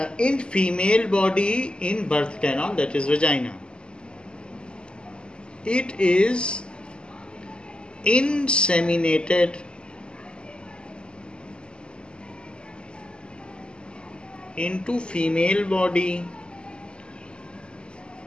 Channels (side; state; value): right; late; 0.051 ms